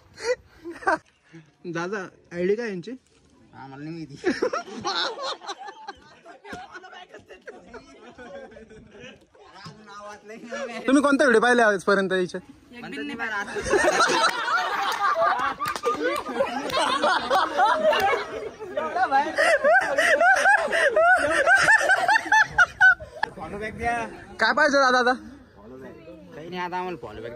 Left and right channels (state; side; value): identical; both; correlation 1.00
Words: दादा आयडी काय यांची? आम्हाला नाही माहिती. तुम्ही कोणता व्हिडिओ पाहिले आजपर्यंत याच्यात? काय पाहिजे दादा आता? काही नाही, आता आम्हाला फॉलो बॅक